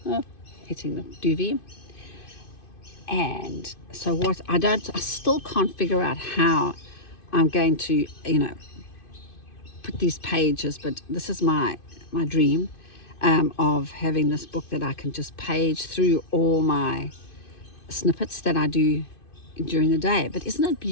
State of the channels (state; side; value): late; right; 2.5 ms